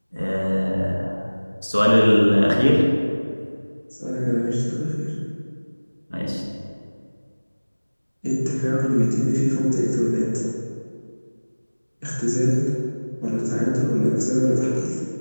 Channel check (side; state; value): both; inverted; correlation -1.00